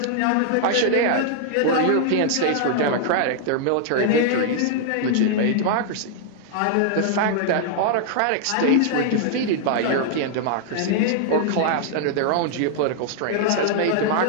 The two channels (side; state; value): both; different; correlation -0.01